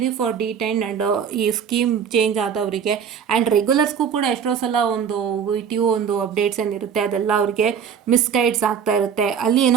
ಫಾರ್ ಡಿಟೈನ್ಡ್ ಆ್ಯಂಡ್ ಈ ಸ್ಕೀಮ್ ಚೇಂಜ್ ಆದವರಿಗೆ. ಆ್ಯಂಡ್ ರೆಗ್ಯುಲರ್ಸ್ಗೂ ಕೂಡ ಎಷ್ಟೋ ಸಲ ಒಂದು VTU ಒಂದು ಅಪ್ಡೇಟ್ಸ್ ಏನಿರುತ್ತೆ ಅದೆಲ್ಲ ಅವರಿಗೆ ಮಿಸ್ಗೈಡ್ಸ್ ಆಗ್ತಾ ಇರುತ್ತೆ. ಅಲ್ಲಿ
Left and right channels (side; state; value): left; quieter; 7.4 dB